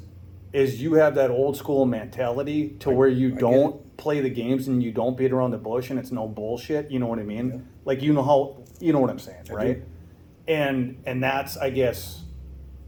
is you have that old school mentality to where you don't play the games and you don't beat around the bush and it's no bullshit. You know what I mean? Yeah. Like you know what I'm saying, right? And that's, I guess,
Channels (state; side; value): identical; both; correlation 1.00